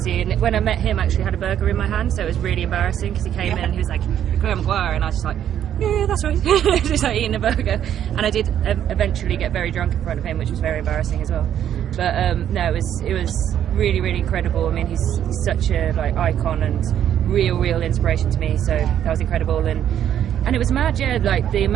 and when I met him I actually had a burger in my hand, so it was really embarrassing because he came in and he was like, Clare Maguire, and I was just like, yeah, that's right. Just like eating a burger, and I did eventually get very drunk in front of him, which was very embarrassing as well. But no, it was really incredible. I mean, he's such a like icon and real inspiration to me, so that was incredible. And it was mad, yeah, like the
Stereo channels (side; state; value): left; quieter; 10.2 dB